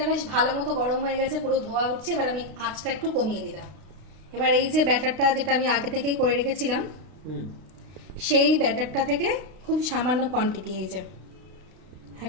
বেশ ভালো মতো গরম হয়ে গেছে, পুরো ধোয়া উঠছে, এবার আমি আঁচটা একটু কমিয়ে দিলাম। এবার এই যে ব্যাটারটা যেটা আমি আগে থেকেই করে রেখেছিলাম, সেই ব্যাটারটা থেকে খুব সামান্য কোয়ান্টিটি, এই যে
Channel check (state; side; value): late; left; 32 ms